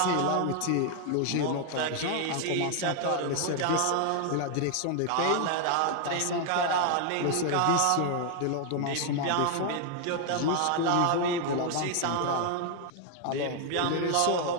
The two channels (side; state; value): both; different; correlation 0.00